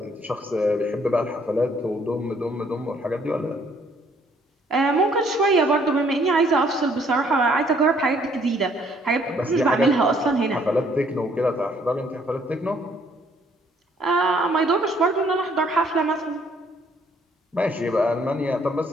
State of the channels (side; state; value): both; normal; correlation 0.64